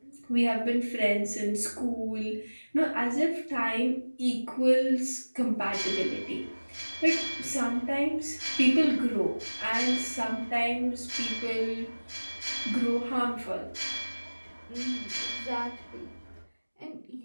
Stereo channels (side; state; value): both; inverted; correlation -1.00